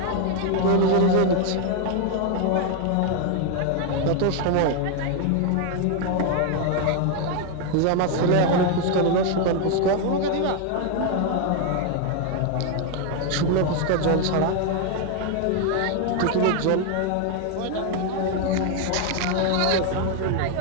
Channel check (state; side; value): different; both; correlation 0.01